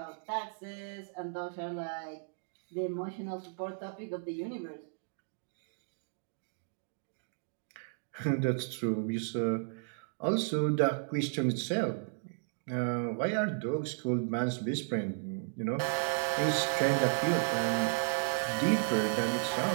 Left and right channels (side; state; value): left; silent; digital silence